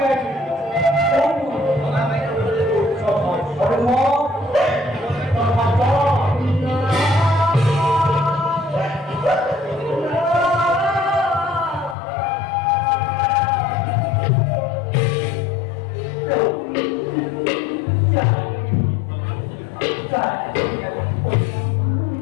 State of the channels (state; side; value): drops out; right; at 12.0 s